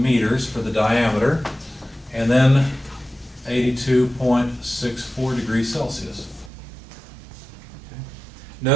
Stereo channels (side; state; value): left; drops out; at 6.5 s